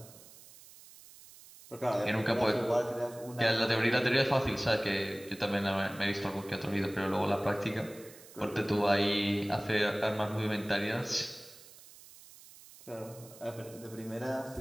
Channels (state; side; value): noise; right; hiss, 20 dB below the sound